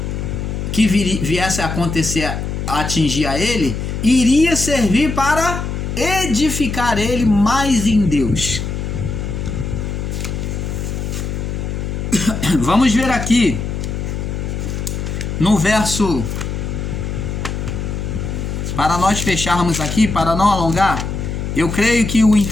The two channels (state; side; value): noise; left; hum, 4 dB below the sound